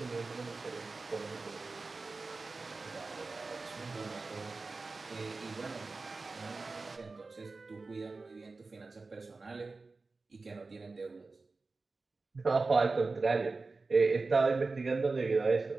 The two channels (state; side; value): quieter; left; 3.8 dB